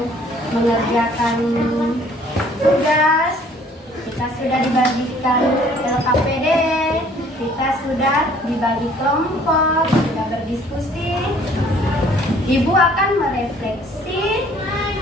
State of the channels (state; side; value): normal; both; correlation 0.57